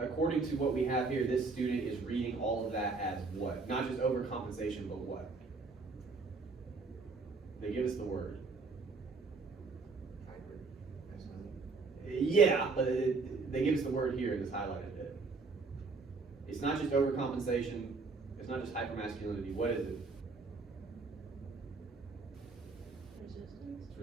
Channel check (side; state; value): left; quieter; 4.2 dB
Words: according to what we have here, this student is reading all of that as what? Not just overcompensation, but what? They give us the word. Hybrid. That's not Yeah, but they give us the word here in this highlighted bit. It's not just overcompensation. It's not just hypermasculinity. What is it? Resistance. It's